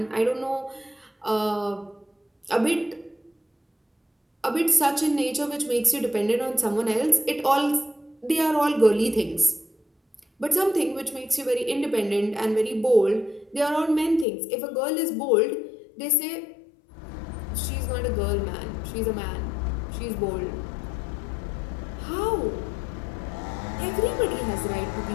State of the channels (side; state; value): right; drops out; at 14.2 s